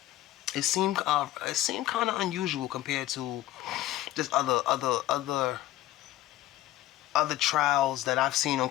It seemed kind of unusual compared to just other trials that I've seen on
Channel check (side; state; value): right; quieter; 14.8 dB